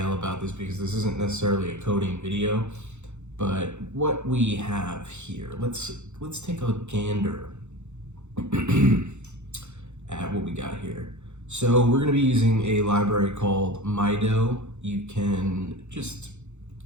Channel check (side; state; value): left; late; 0.83 ms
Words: about this because this isn't necessarily a coding video, but what we have here, let's take a gander at what we got here. So we're gonna be using a library called MIDO. You can just